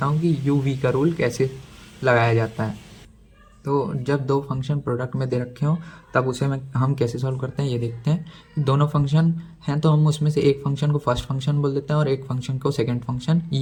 हूँ कि यू वी का रूल कैसे लगाया जाता है। तो जब दो फंक्शन प्रोडक्ट में दे रखे हों तब उसे हम कैसे सॉल्व करते हैं ये देखते हैं। दोनों फंक्शन हैं तो हम उसमें से एक फंक्शन को फर्स्ट फंक्शन बोल देते हैं और एक फंक्शन को सेकंड फंक्शन।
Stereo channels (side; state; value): both; identical; correlation 1.00